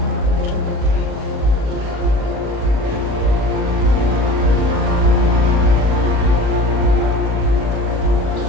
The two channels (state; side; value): late; left; 38 ms